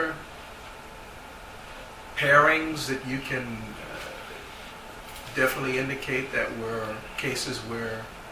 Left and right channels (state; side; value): identical; both; correlation 1.00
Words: pairings that you can definitely indicate that were cases where